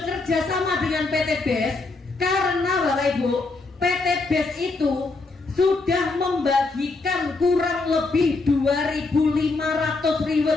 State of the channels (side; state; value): right; quieter; 3.6 dB